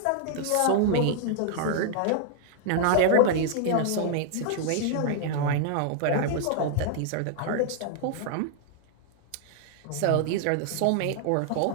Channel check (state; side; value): different; both; correlation 0.00